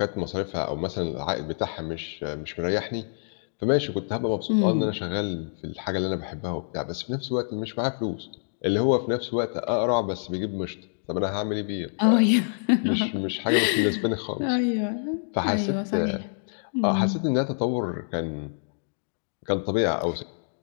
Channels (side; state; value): right; silent; digital silence